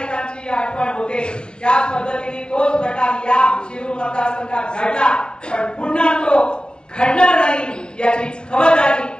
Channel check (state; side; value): late; right; 0.049 ms